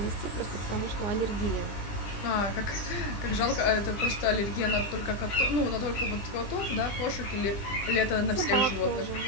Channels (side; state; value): right; late; 20 ms